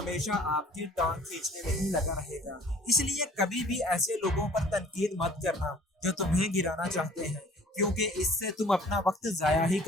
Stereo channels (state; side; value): normal; both; correlation 0.52